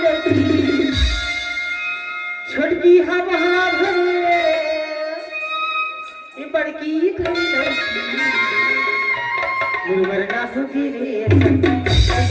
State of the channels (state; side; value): identical; both; correlation 1.00